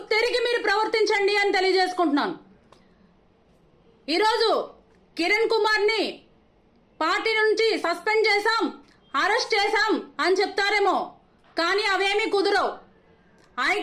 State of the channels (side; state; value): both; identical; correlation 1.00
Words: మీరు ప్రవర్తించండి అని తెలియజేసుకుంటున్నాను. ఈరోజు కిరణ్ కుమార్ని పార్టీ నుంచి సస్పెండ్ చేశాం, అరెస్ట్ చేశాం అని చెప్తారేమో, కానీ అవేమీ కుదరవు.